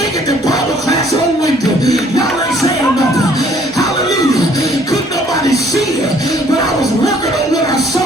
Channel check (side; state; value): both; normal; correlation 0.60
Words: it to Bible class on Wednesday. Y'all ain't saying nothing. Hallelujah. Couldn't nobody see it, but I was working on what I saw